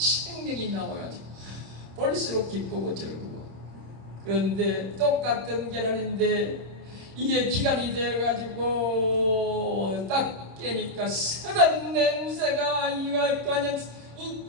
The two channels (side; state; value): left; late; 26 ms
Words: 나와가지고 볼수록 기쁘고 즐거워. 그런데 똑같은 계란인데 이게 기간이 되어가지고 딱 깨니까 썩은 냄새가 이거 그냥